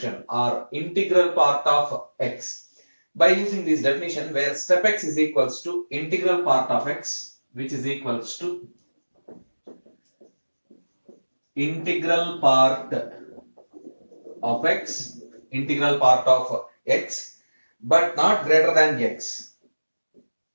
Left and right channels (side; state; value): both; inverted; correlation -1.00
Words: or integral part of x. By using this definition where step x is equals to integral part of x, which is equals to integral part of x, integral part of x, but not greater than x,